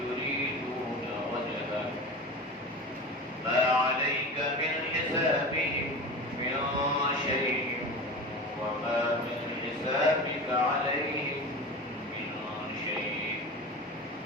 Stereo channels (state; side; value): normal; both; correlation 0.31